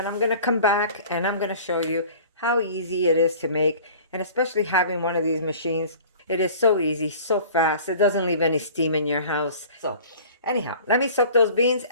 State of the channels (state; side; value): inverted; both; correlation -0.45